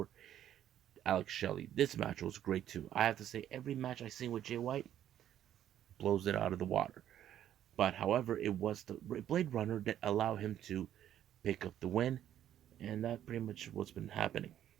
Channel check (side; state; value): left; quieter; 11.1 dB